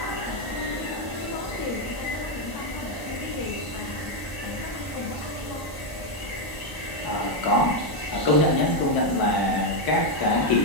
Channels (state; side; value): late; right; 1.0 ms